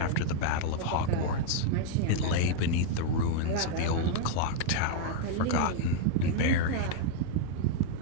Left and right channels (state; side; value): different; both; correlation 0.00